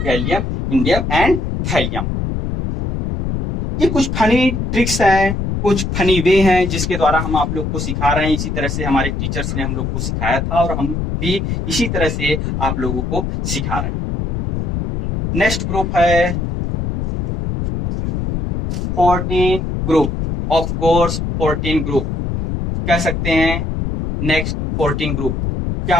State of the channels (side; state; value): left; noise; rumble, 3 dB below the sound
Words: gallium, indium and thallium. ये कुछ फनी ट्रिक्स हैं, कुछ फनी वे हैं जिसके द्वारा हम आप लोग को सिखा रहे हैं। इसी तरह से हमारे टीचर्स ने हम लोग को सिखाया था, और हम भी इसी तरह से आप लोगों को सिखा रहे हैं। नेक्स्ट ग्रुप है 14 ग्रुप, ऑफ कोर्स 14 ग्रुप कह सकते हैं। नेक्स्ट 14 ग्रुप क्या